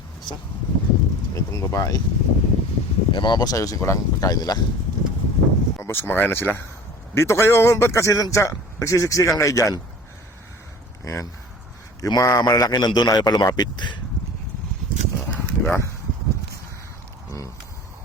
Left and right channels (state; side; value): normal; both; correlation 0.42